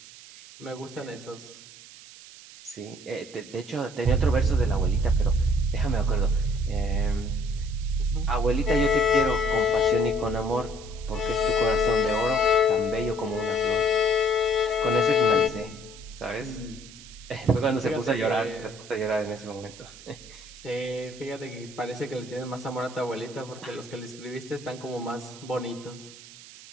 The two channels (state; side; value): noise; right; hiss, 18 dB below the sound